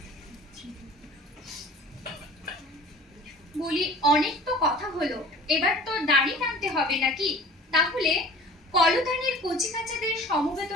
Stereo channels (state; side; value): normal; both; correlation 0.44